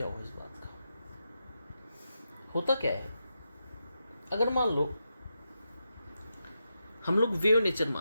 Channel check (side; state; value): both; inverted; correlation -0.87